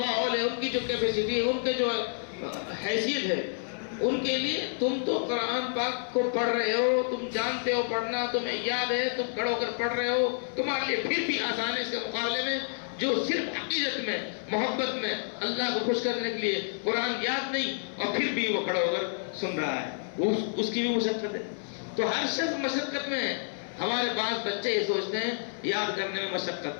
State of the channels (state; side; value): silent; right; 58 dB below the other